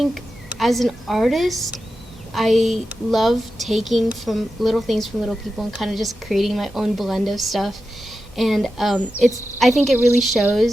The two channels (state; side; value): normal; both; correlation 0.91